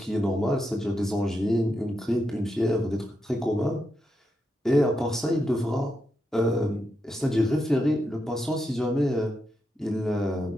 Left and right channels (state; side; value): normal; both; correlation 0.84